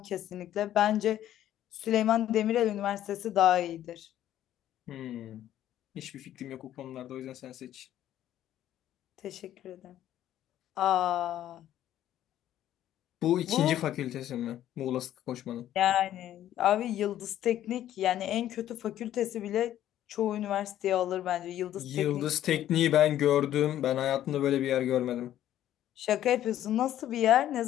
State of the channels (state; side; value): quieter; right; 12.1 dB